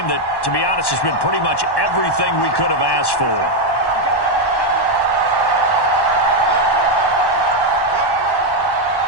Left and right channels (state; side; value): late; right; 1.1 ms